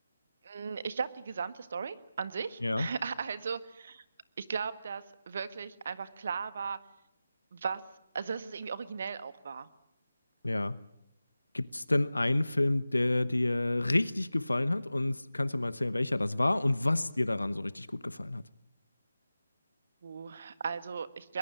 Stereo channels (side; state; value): both; inverted; correlation -0.95